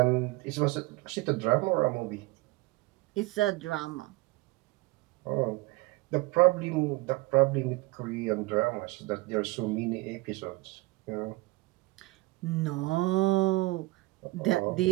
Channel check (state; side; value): quieter; left; 22.0 dB